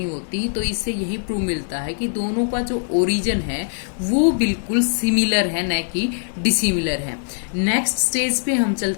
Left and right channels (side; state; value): right; silent; digital silence